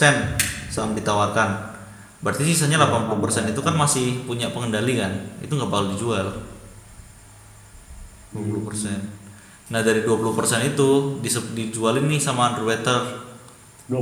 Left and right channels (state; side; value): identical; both; correlation 1.00